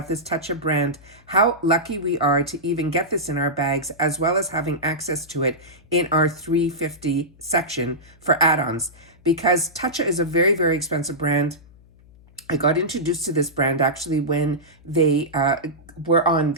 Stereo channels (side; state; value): left; noise; hum, 26 dB below the sound